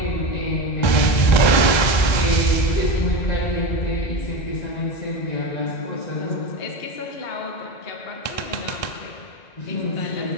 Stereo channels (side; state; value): right; late; 2.0 ms